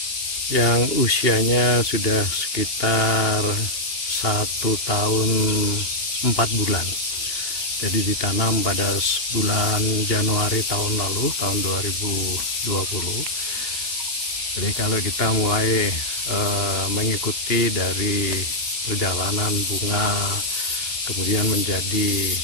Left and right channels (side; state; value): right; late; 2.8 ms